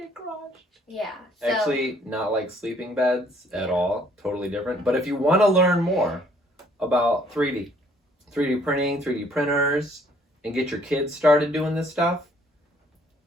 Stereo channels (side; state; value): both; normal; correlation 0.62